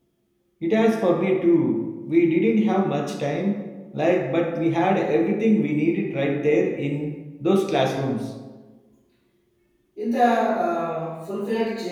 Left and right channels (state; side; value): identical; both; correlation 1.00